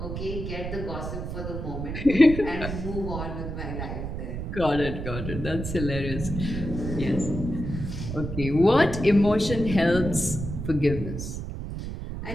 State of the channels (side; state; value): right; noise; rumble, 6 dB below the sound